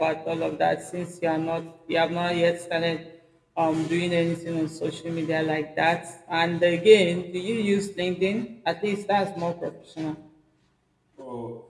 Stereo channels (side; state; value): both; identical; correlation 1.00